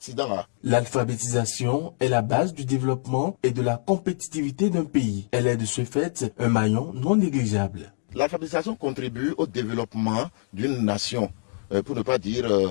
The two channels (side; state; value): right; silent; digital silence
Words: L'alphabétisation est la base du développement et de la compétitivité d'un pays. Elle est de ce fait un maillon non négligeable. L'alphabétisation contribue au développement d'une nation, pour ne pas dire